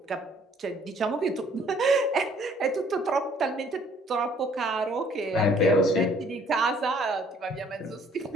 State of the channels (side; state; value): both; normal; correlation 0.59